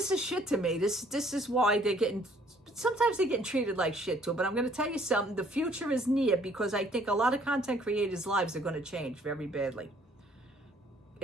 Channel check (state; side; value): normal; both; correlation 0.61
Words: shit to me. This is why they're getting, sometimes they're getting treated like shit too. But I'm going to tell you something. The future is near because I think a lot of content creators' lives are going to change very badly.